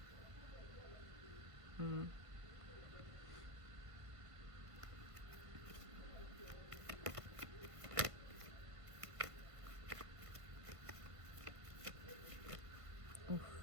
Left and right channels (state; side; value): late; left; 1.5 ms